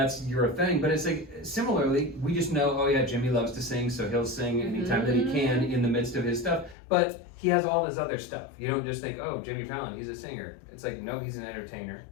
your thing, but it's like similarly, we just know, oh yeah, Jimmy loves to sing, so he'll sing anytime that he can in the midst of his stuff. But he has all this other stuff. You don't just think, oh, Jimmy Fallon, he's a singer. It's like, no, he's an entertainer.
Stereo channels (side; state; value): right; drops out; at 6.8 s